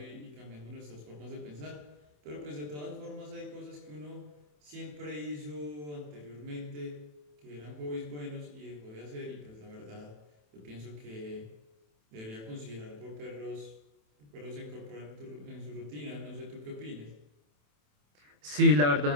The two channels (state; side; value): late; left; 27 ms